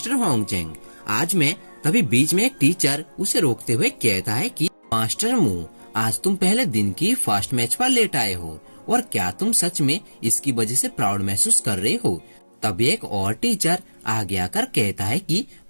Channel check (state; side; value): inverted; both; correlation -1.00